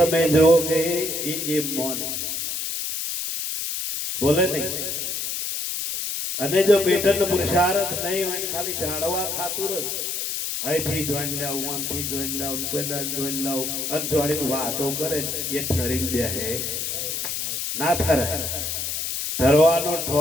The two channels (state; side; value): noise; left; hiss, 3 dB below the sound